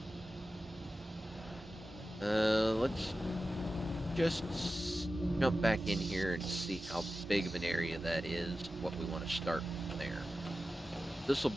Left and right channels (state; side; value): normal; both; correlation 0.93